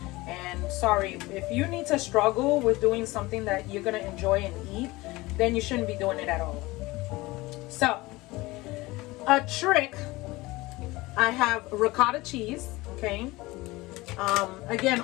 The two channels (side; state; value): right; quieter; 20.8 dB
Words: And sorry, if you need to struggle with doing something that you're gonna enjoy and eat, then you shouldn't be doing it at all. So, a trick, I have ricotta cheese, okay? Again,